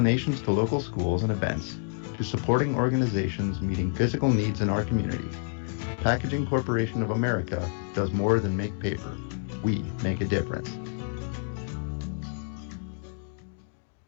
to local schools and events, to supporting organizations meeting physical needs in our community, Packaging Corporation of America does more than make paper. We make a difference.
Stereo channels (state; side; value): silent; right; digital silence